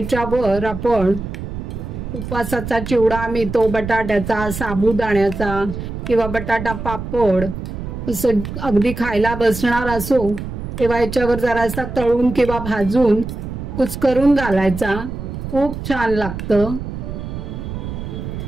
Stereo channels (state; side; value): noise; right; rumble, 7 dB below the sound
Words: आपण उपवासाचा चिवडा मिळतो, बटाट्याचा, साबुदाण्याचा किंवा बटाटा पापड, असं अगदी खायला बसणार असो तेव्हा याच्यावर जरासा तळून किंवा भाजून कुस्करून घालायचा। खूप छान लागतं।